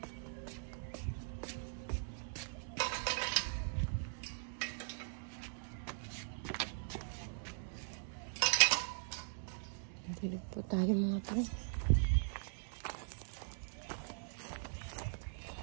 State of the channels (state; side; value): silent; left; digital silence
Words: Dilig po tayo mga pre.